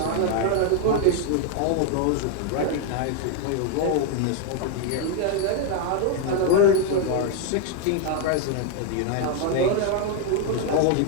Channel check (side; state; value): both; different; correlation 0.00